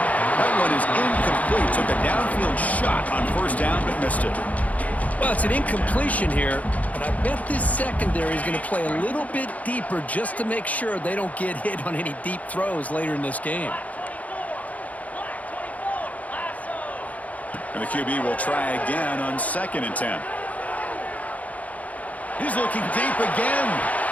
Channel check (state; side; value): late; right; 0.071 ms